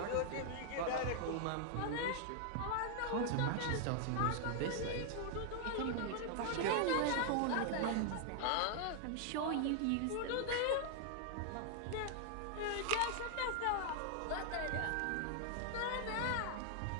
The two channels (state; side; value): different; both; correlation 0.00